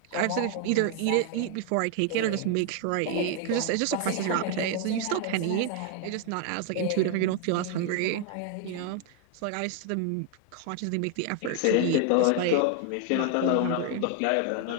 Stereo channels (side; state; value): both; different; correlation 0.00